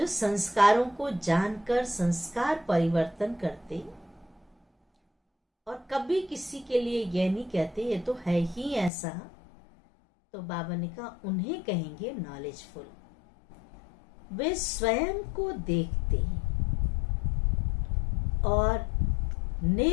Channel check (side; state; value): right; drops out; at 8.9 s